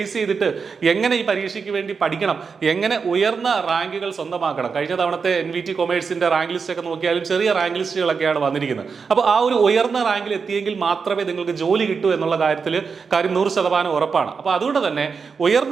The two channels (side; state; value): left; quieter; 5.5 dB